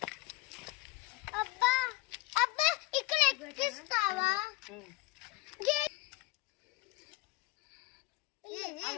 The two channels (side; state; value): right; quieter; 21.8 dB